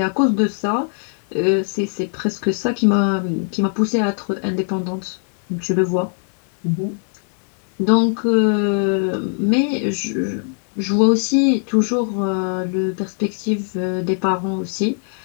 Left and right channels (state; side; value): silent; right; 58 dB below the other